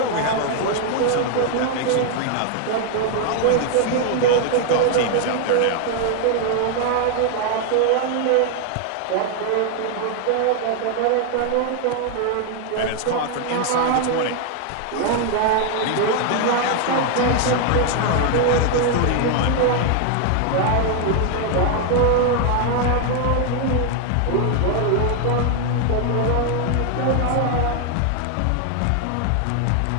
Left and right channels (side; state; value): both; different; correlation 0.00